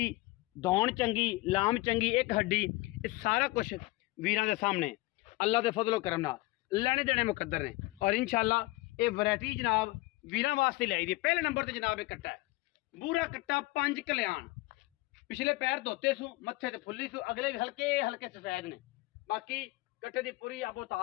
दौड़ चंगी लाम चंगी एक हड्डी ये सारा कुछ वीरां दे सामने अल्लाह के फजलो करम नाल लेने देने मुकद्दर ने। और इंशाल्लाह ये वैरायटी जनाब वीरां वास्ते लाई दी। पहले नंबर पर जनाब एक कट्टा है बूरा कट्टा 5 कल्याण पिछले पैर धोते सू मत्थे ते फुल्ली सू अगले भी हल्के हल्के सफेद ने बाकी कट्टे की पूरी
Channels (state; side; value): quieter; right; 20.8 dB